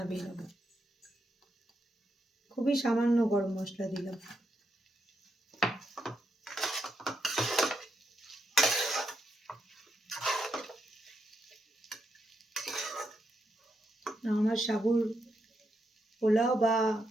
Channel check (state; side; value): normal; both; correlation 0.82